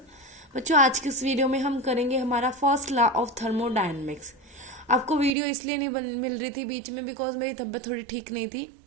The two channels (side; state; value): left; drops out; at 5.3 s